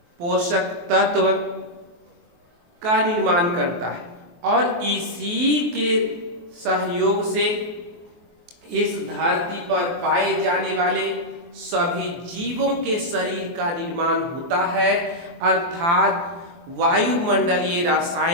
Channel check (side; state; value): left; late; 23 ms